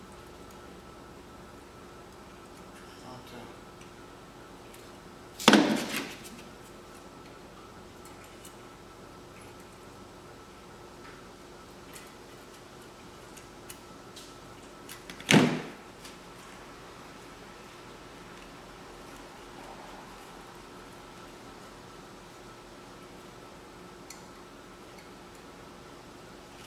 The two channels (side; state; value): both; identical; correlation 1.00